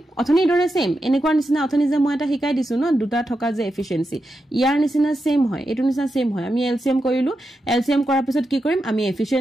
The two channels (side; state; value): both; normal; correlation 0.88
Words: অথনি দৰে সেম এনেকুৱা নিচিনা অথনি যে মই এটা শিকাই দিছো ন দুটা থকা যে এফিচিয়েন্সি ইয়াৰ নিচিনা সেম হয় এটো নিচিনা সেম হয় আমি এলসিএম কৰিলো এলসিএম কৰাৰ পিছত কি কৰিম আমি